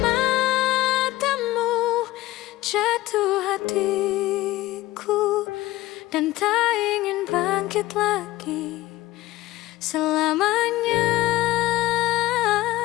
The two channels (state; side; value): quieter; right; 17.4 dB